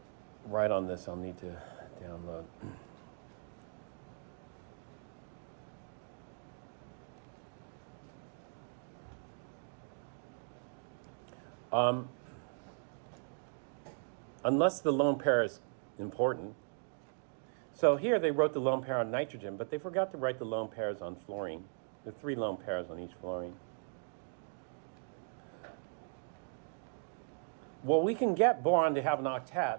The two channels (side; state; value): left; silent; digital silence